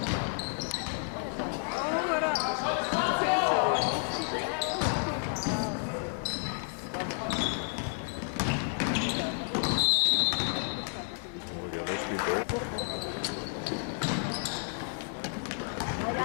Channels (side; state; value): right; silent; 57 dB below the other